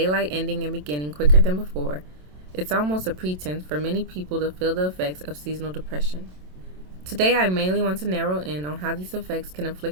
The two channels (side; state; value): left; late; 27 ms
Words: ending and beginning quicker than before, it's almost a pretense for many people to feel the effects of seasonal depression. Today, I mainly want to narrow in on how these effects can